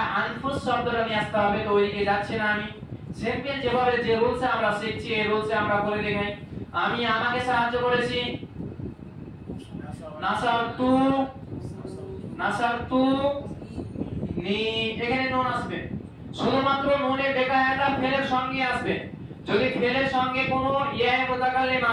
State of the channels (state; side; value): identical; both; correlation 1.00